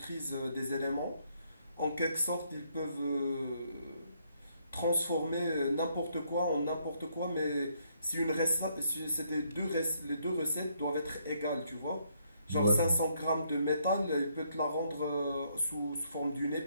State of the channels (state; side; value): inverted; both; correlation -0.72